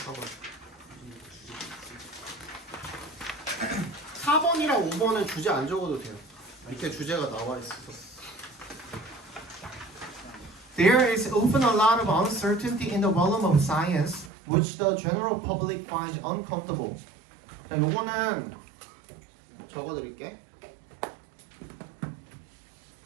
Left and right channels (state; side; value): drops out; left; at 14.3 s